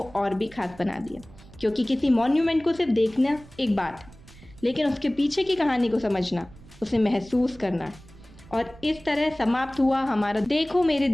और भी खास बना दिया, क्योंकि किसी मॉन्यूमेंट को सिर्फ देखना एक बात है, लेकिन उसके पीछे की कहानी को समझना, उसे महसूस करना है। और इस तरह समाप्त हुआ हमारा देखो मेरी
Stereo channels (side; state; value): right; noise; rumble, 22 dB below the sound